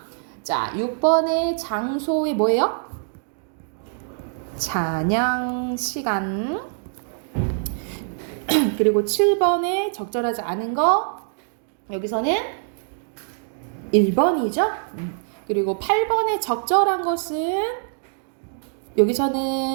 자, 6번의 장소의 뭐예요? 잔향 시간. 그리고 7번에 적절하지 않은 거 여기서는 1번이죠. 그리고 8번에 적절한 것은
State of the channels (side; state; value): left; silent; digital silence